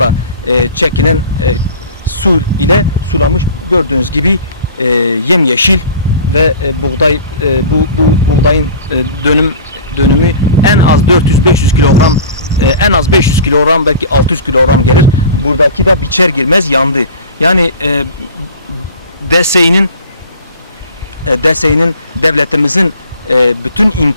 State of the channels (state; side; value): inverted; both; correlation -0.41